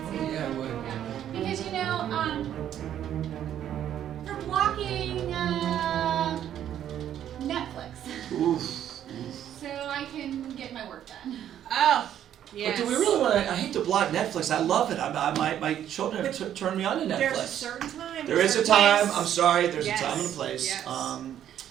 yeah, I would. Because they're blocking Netflix, Oof. so I can get my work done. Oh, But do we really want to? I hate to block Netflix. I love it. My children have turned me on to Netflix. There's a certain time. There is a certain time. place. I'm sorry. There's Yes, a time and a place. yes.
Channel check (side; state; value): left; quieter; 10.6 dB